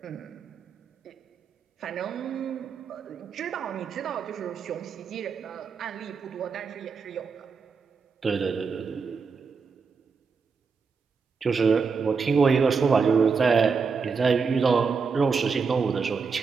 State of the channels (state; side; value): quieter; left; 5.3 dB